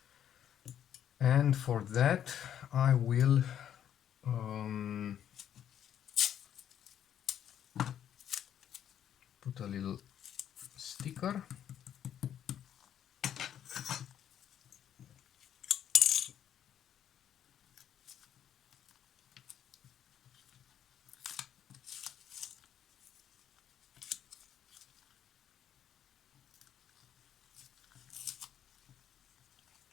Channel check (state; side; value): quieter; right; 9.9 dB